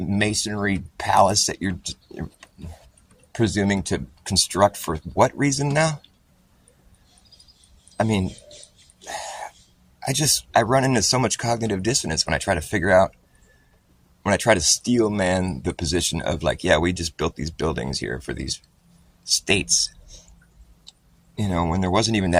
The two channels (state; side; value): identical; both; correlation 1.00